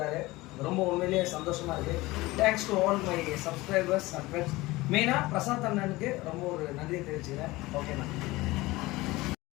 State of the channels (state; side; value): quieter; right; 20.2 dB